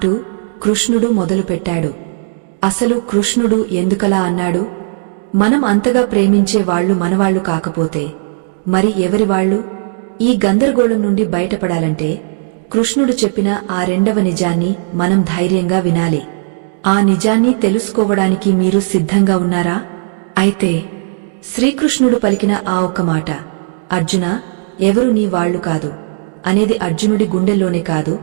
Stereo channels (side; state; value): left; silent; digital silence